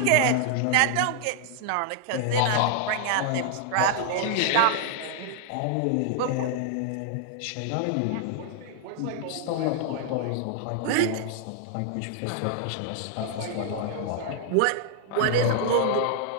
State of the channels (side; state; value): both; different; correlation -0.01